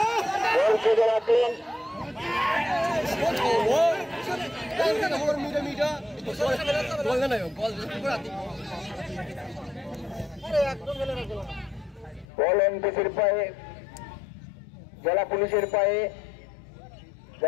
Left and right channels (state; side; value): drops out; right; at 12.2 s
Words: বল খেলে রাখেন। বল এনপিসির পায়ে, জেলা পুলিশের পায়ে,